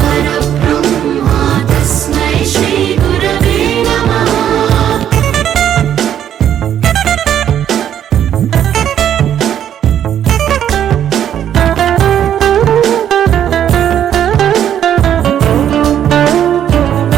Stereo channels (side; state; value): left; quieter; 10.1 dB